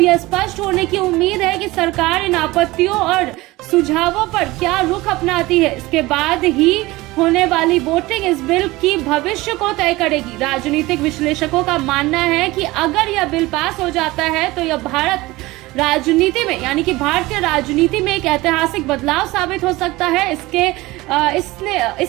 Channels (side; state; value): left; quieter; 20.1 dB